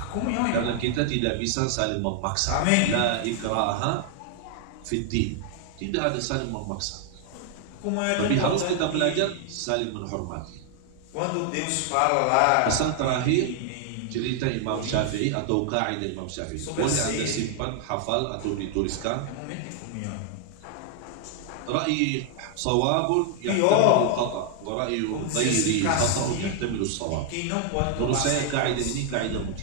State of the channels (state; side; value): different; both; correlation 0.00